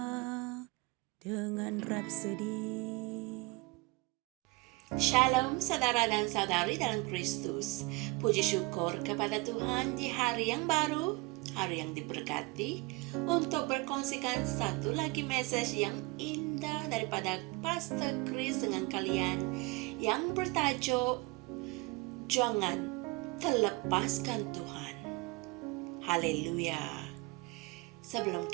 dengan Rapsodi. Shalom saudara dan saudari dalam Kristus. Puji syukur kepada Tuhan di hari yang baru, hari yang diberkati, untuk berkongsikan satu lagi message yang indah daripada Pastor Chris dengan kalian yang bertajuk Jangan Terlepaskan Tuhan. Haleluya. Sebelum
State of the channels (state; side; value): quieter; left; 24.9 dB